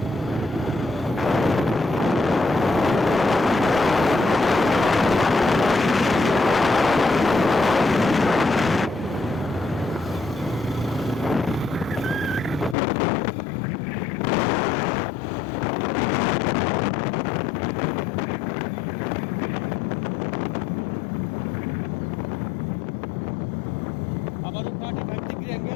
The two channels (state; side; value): drops out; right; at 12.8 s